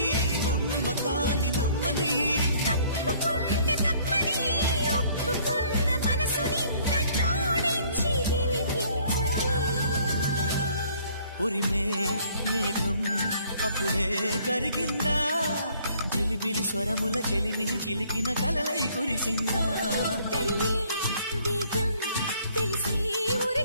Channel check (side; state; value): both; inverted; correlation -0.60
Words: నమ్మకాన్ని నమ్మని ఉరిమే మేఘం అప్పుడే కరిగిందా జిలిబిలి స్వరముల చెలిమిని చిలికిన కలలై కురిసిందా తెలిసి